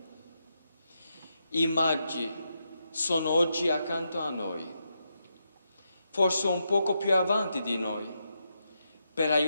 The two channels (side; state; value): both; inverted; correlation -0.84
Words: I magi sono oggi accanto a noi, forse un poco più avanti di noi, per